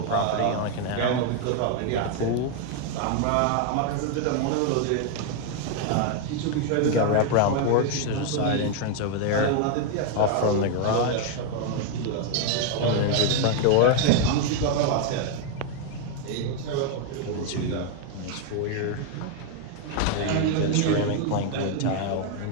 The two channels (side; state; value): both; different; correlation 0.01